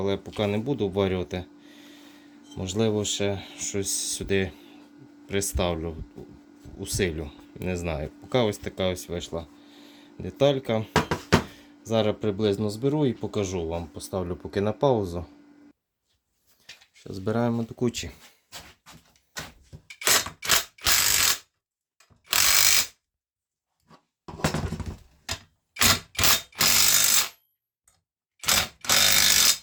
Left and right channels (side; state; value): both; identical; correlation 1.00